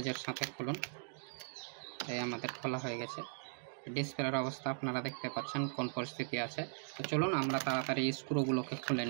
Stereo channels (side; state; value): left; silent; digital silence